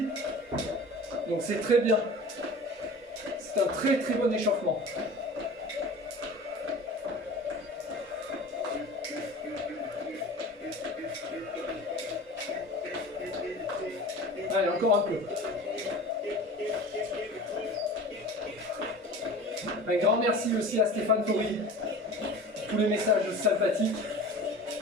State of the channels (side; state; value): both; normal; correlation 0.38